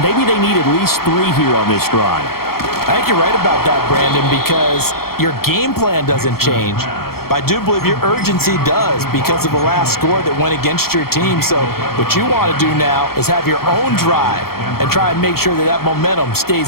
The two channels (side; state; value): right; late; 0.94 ms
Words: maybe they need at least 3 here on this drive. I think you're right about that, Brandon, because your game plan doesn't change. But I do believe your urgency does because of the last score that went against your team. So what you want to do now is have your own drive and try and make sure that that momentum